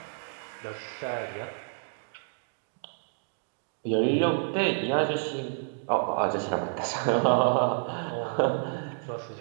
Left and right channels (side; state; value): left; silent; digital silence